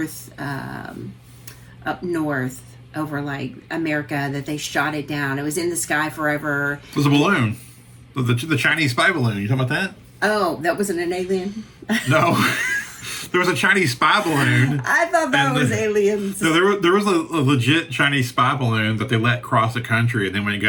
north, over, like, America, that they shot it down? It was in the sky forever. It was a balloon. The Chinese spy balloon. You talking about that? Oh, that wasn't an alien? No. There was a Chinese spy balloon. I thought that was aliens. No, there was a legit Chinese spy balloon that they let cross the country, and then when it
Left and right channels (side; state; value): both; identical; correlation 1.00